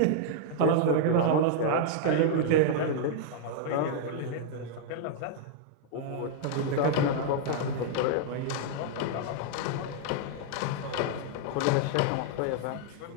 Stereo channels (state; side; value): different; both; correlation -0.01